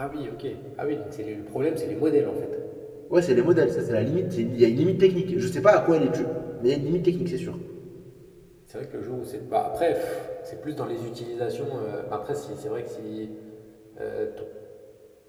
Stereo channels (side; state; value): both; identical; correlation 1.00